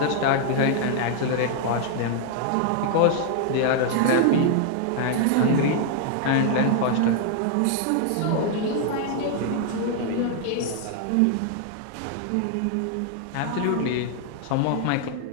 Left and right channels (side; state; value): both; different; correlation 0.00